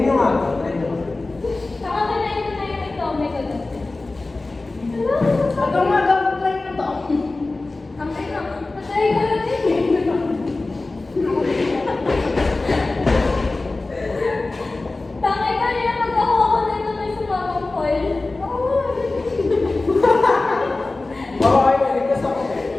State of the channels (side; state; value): right; quieter; 3.2 dB